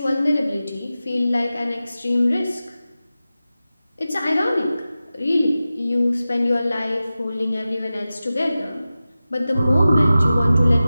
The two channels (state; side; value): inverted; both; correlation -0.95